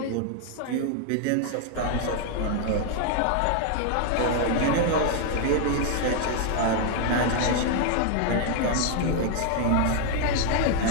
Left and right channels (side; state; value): both; different; correlation 0.00